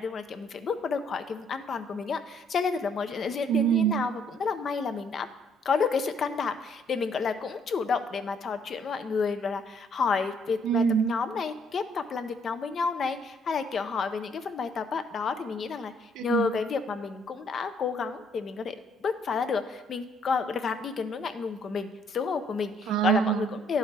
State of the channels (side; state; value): both; normal; correlation 0.66